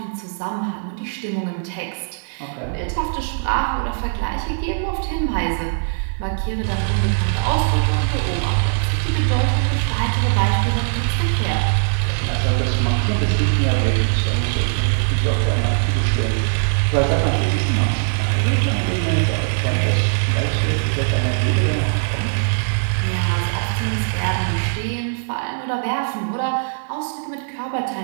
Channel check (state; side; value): silent; left; digital silence